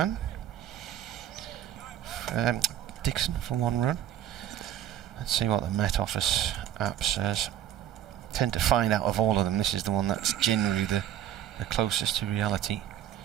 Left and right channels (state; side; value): quieter; left; 11.1 dB